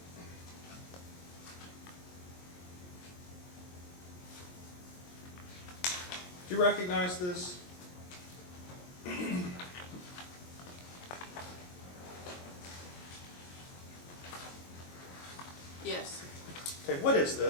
Do you recognize this? Yes. Okay, what is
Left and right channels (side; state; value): right; late; 22 ms